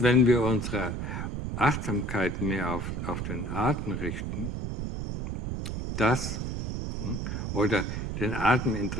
wenn wir unsere Achtsamkeit mehr auf den Atem richten, oder den Atem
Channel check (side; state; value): right; noise; rumble, 3 dB below the sound